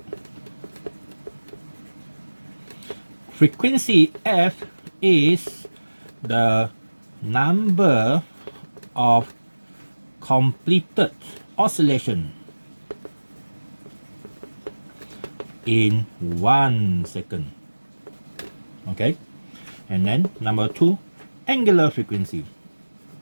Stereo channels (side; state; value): both; inverted; correlation -1.00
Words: Frequency f is the number of completed oscillation in 1 second. Okay, and then number 2, angular frequency.